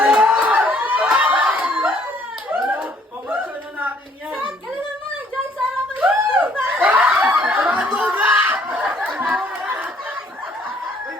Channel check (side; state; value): both; normal; correlation 0.62